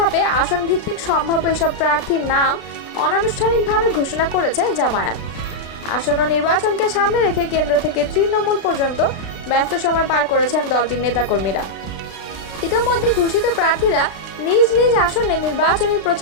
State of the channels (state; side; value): late; right; 36 ms